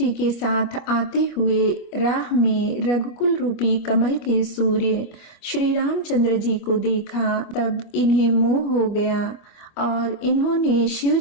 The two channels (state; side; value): late; right; 25 ms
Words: के साथ आते हुए राह में रघुकुल रूपी कमल के सूर्य श्री रामचंद्र जी को देखा। तब इन्हें मोह हो गया और इन्होंने शिव